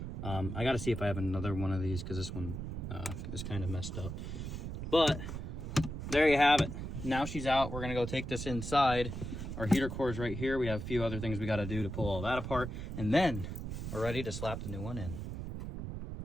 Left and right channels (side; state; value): right; noise; rumble, 6 dB below the sound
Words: I got to see if I have another one of these because this one is kind of messed up. But there you have it. Now she's out. We're gonna go take this inside. Our heater core is right here. We have a few other things we got to do to pull all that apart, and then we're ready to slap the new one in.